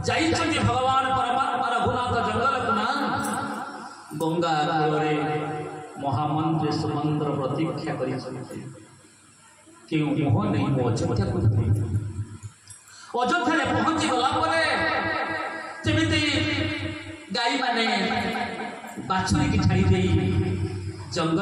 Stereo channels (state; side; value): identical; both; correlation 1.00